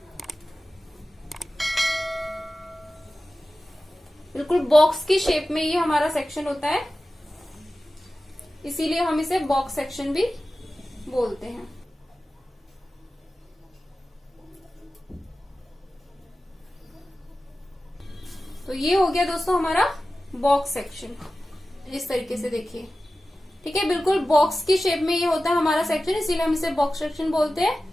बिल्कुल बॉक्स की शेप में ये हमारा सेक्शन होता है, इसीलिए हम इसे बॉक्स सेक्शन भी बोलते हैं। तो ये हो गया दोस्तों हमारा बॉक्स सेक्शन। इस तरीके से देखिए, ठीक है, बिल्कुल बॉक्स की शेप में ये होता है हमारा सेक्शन, इसीलिए हम इसे बॉक्स सेक्शन बोलते हैं।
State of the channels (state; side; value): normal; both; correlation 0.95